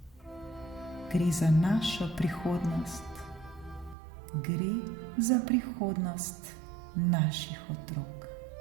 Gre za našo prihodnost. Gre za prihodnost naših otrok.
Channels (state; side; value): drops out; left; at 4.0 s